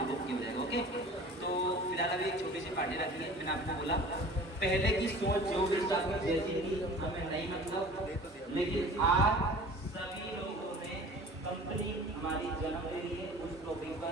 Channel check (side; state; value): both; normal; correlation 0.43